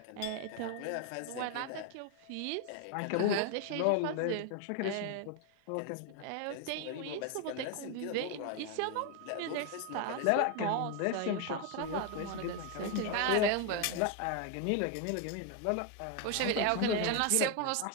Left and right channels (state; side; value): different; both; correlation 0.01